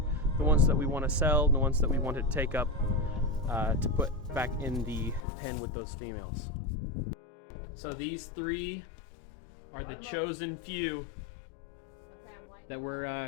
the ones that we want to sell, the ones that we want to take up to put back in the pen with those females. So these 3 are the chosen few that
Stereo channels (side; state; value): right; drops out; at 5.2 s